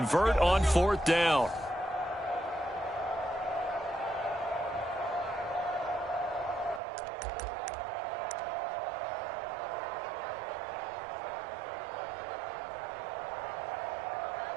on 4th down.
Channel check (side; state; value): left; drops out; at 6.8 s